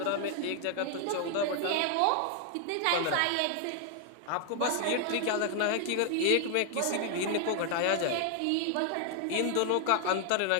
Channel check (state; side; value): different; both; correlation 0.00